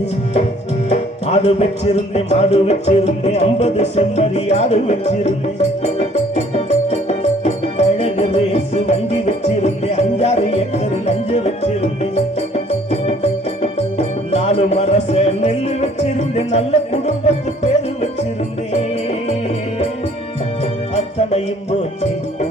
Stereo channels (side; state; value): both; normal; correlation 0.58